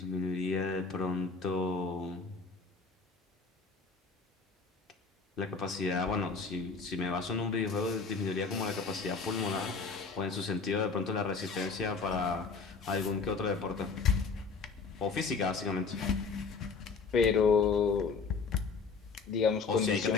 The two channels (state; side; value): quieter; right; 4.8 dB